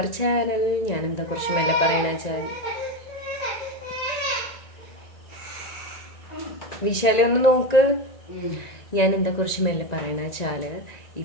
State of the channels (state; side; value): late; right; 1.9 ms